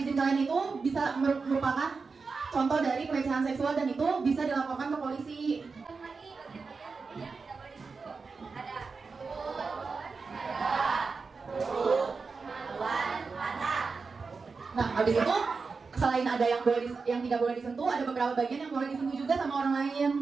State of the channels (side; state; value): left; quieter; 4.6 dB